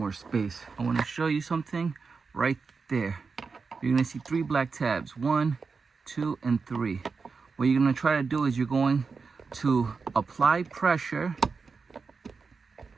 space. I want to show you something right there. You're going to see 3 black tabs. 1, 2, and 3. What you're going to try to do is you're going to apply pressure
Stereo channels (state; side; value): quieter; left; 4.9 dB